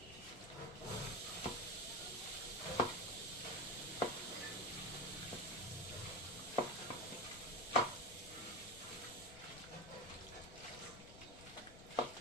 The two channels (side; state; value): left; noise; rumble, 15 dB below the sound